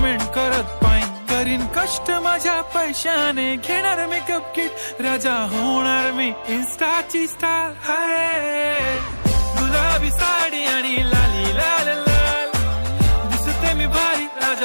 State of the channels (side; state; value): both; inverted; correlation -1.00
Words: करत पाईन. करीन कष्ट माझ्या पैशाने घेणार मेकअप किट. राजा होणार मी इन्स्टाची स्टार. हाय गुलाबी साडी आणि लाली लाल लाल, दिसते मी भारी